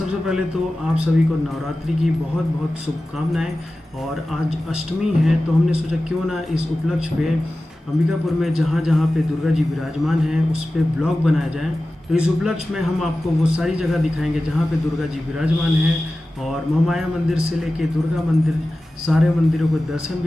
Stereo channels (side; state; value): both; normal; correlation 0.95